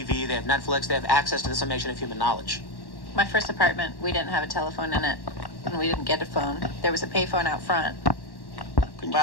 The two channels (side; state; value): right; late; 1.1 ms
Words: they have Netflix, they have access to the summation of human knowledge. My first apartment, we didn't have a telephone in it, and we didn't get a phone. There was a payphone out front.